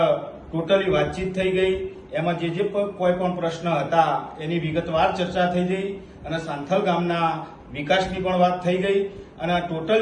ટોટલી વાતચીત થઈ ગઈ। એમાં જે કોઈ પણ પ્રશ્ન હતા એની વિગતવાર ચર્ચા થઈ ગઈ અને સાંથલ ગામના વિકાસની પણ વાત થઈ ગઈ અને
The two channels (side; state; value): both; identical; correlation 1.00